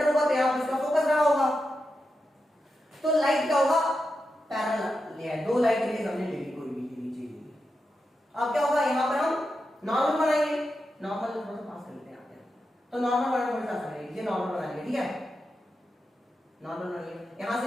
होगा, तो यहाँ पे इसका फोकस रहा होगा, तो लाइट क्या होगा? पैरेलल ले, दो लाइट रेज हमने ले ली, कोई भी नीचे ली। अब क्या होगा, यहाँ पर हम नॉर्मल बनाएंगे, नॉर्मल थोड़ा सा पास कर लेते हैं, तो नॉर्मल बनाना थोड़ा सा आसान है, ये नॉर्मल बना लिया, ठीक है, नॉर्मल बना लिया, यहां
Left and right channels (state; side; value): normal; both; correlation 0.88